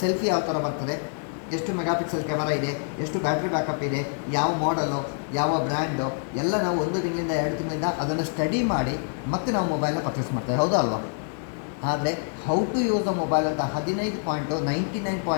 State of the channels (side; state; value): right; silent; 58 dB below the other